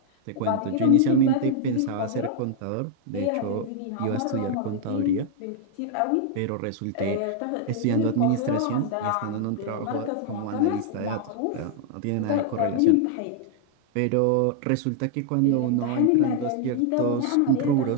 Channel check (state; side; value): different; both; correlation 0.00